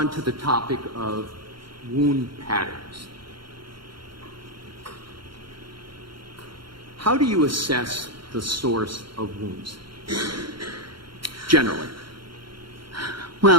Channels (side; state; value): left; late; 0.73 ms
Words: to the topic of wound patterns. How do you assess the source of wounds, generally?